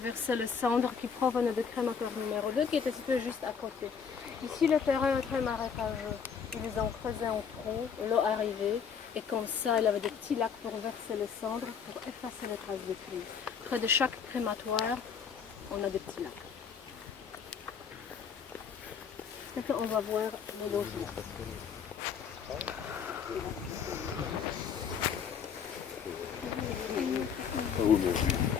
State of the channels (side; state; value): right; quieter; 6.8 dB